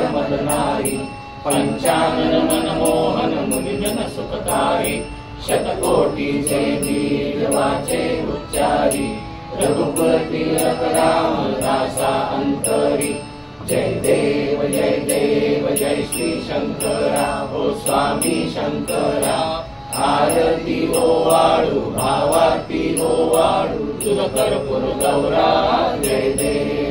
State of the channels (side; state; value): both; identical; correlation 1.00